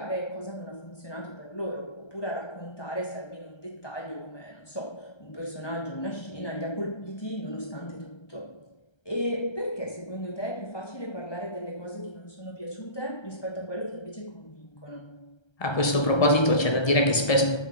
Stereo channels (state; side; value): late; right; 1.3 ms